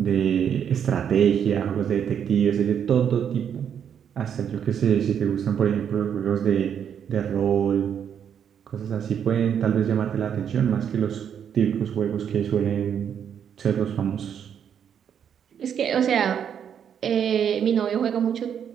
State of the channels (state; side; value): quieter; left; 8.4 dB